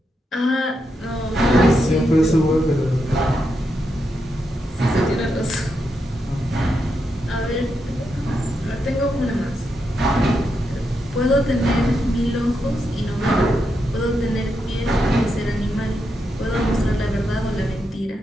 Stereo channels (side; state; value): both; normal; correlation 0.84